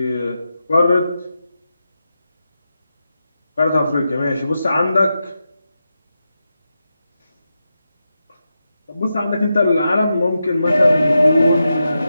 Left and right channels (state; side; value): inverted; both; correlation -0.89